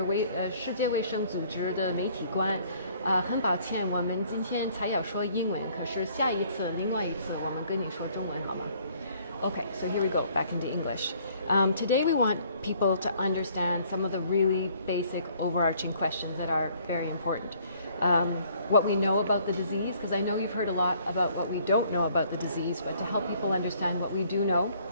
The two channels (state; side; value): inverted; both; correlation -0.60